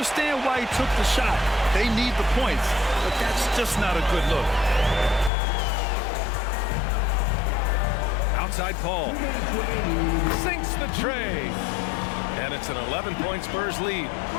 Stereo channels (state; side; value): drops out; right; at 5.3 s